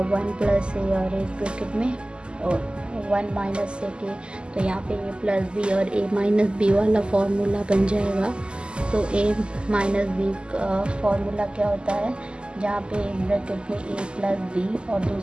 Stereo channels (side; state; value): left; late; 0.049 ms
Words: 1 प्लस a और एक ब्रैकेट में 1 माइनस sec a, तो यहाँ पे a प्लस b और a माइनस b वाला फॉर्मूला बन जाएगा। तो a माइनस b का फॉर्मूला क्या होता है, जहाँ पे एक ब्रैकेट में a प्लस b और